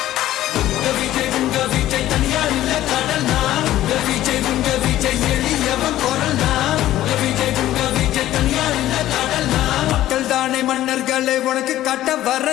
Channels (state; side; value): quieter; right; 13.9 dB